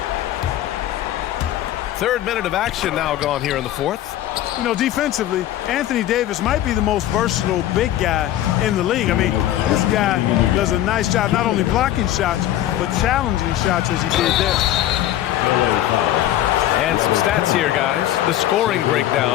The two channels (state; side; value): quieter; right; 13.1 dB